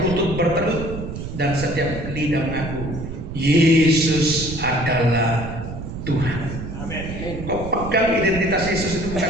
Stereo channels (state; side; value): noise; right; rumble, 8 dB below the sound